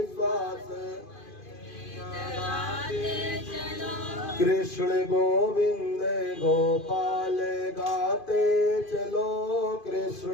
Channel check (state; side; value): late; right; 2.5 ms